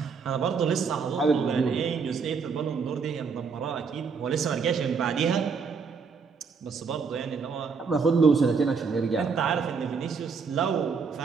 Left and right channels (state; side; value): quieter; left; 5.4 dB